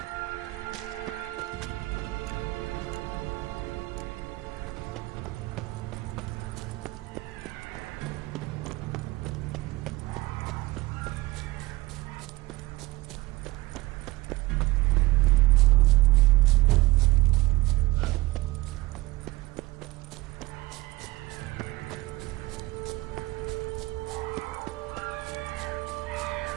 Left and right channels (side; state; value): left; quieter; 20.3 dB